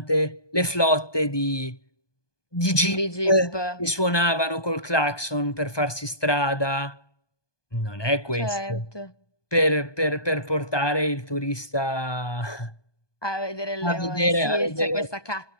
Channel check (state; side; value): late; right; 1.2 ms